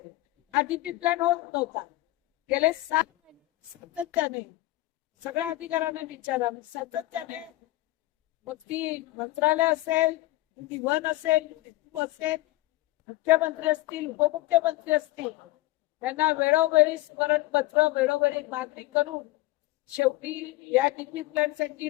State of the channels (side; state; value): right; quieter; 17.8 dB